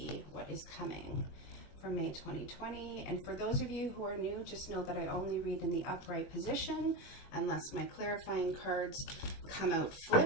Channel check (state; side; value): late; right; 21 ms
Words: what is coming for May 2020. And for those of you who are new, just know that I only read in the upright position. Unless my clarifying cards come out